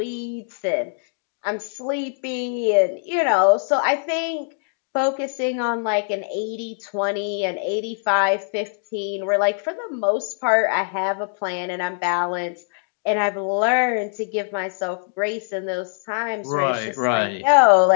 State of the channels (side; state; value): right; silent; digital silence